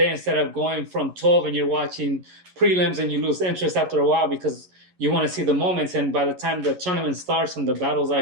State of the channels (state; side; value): late; left; 11 ms